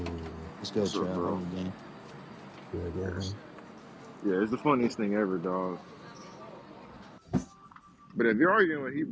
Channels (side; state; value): both; identical; correlation 1.00